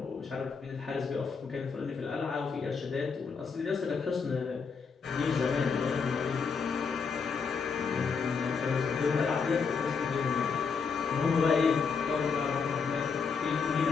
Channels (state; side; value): quieter; right; 5.5 dB